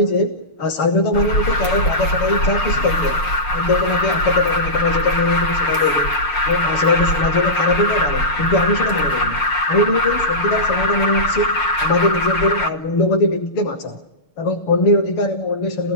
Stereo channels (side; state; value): right; late; 6.6 ms